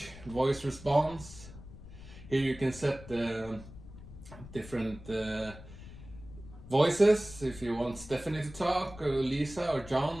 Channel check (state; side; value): noise; left; rumble, 16 dB below the sound